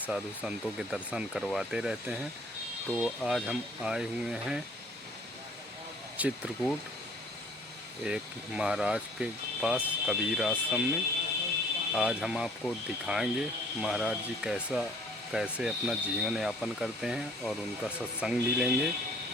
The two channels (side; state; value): both; normal; correlation 0.56